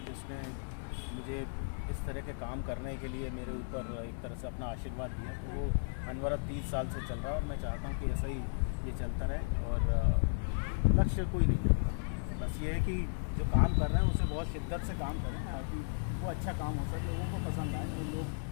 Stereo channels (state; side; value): silent; right; 54 dB below the other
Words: जिसने मुझे इस तरह के काम करने के लिए मेरे ऊपर एक तरह से अपना आशीर्वाद दिया। तो वो अनवरत 30 साल से चल रहा है और मैं चाहता हूँ कि ऐसा ही ये चलता रहे और लक्ष्य कोई नहीं है। बस ये है कि जो काम कर रहे हैं उसे बहुत शिद्दत से काम करें ताकि वो अच्छा काम हो सके, लोगों को पसंद आए और